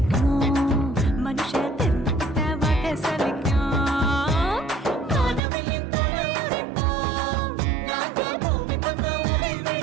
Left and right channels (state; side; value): drops out; left; at 5.4 s